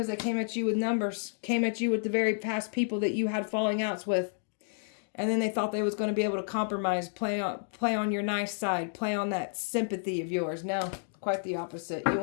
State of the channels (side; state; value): right; silent; digital silence